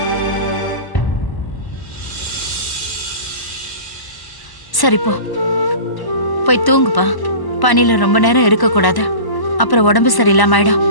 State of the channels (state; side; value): late; right; 1.0 ms